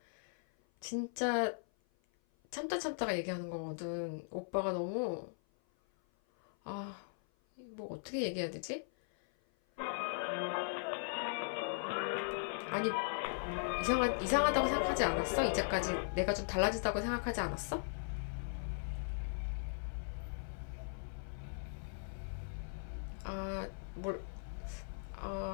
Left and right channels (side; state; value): right; silent; 52 dB below the other